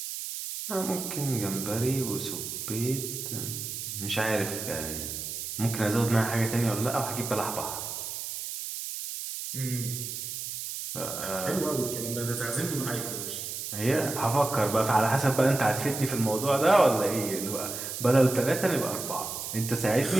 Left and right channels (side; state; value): right; noise; hiss, 6 dB below the sound